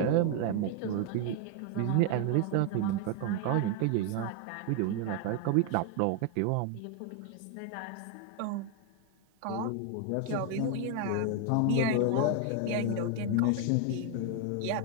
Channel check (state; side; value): different; both; correlation 0.01